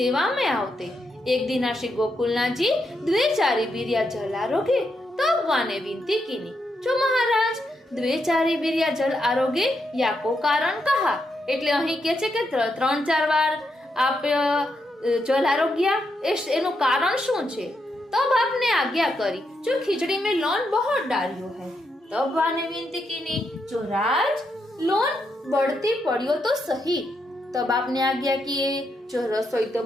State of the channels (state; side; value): normal; both; correlation 0.81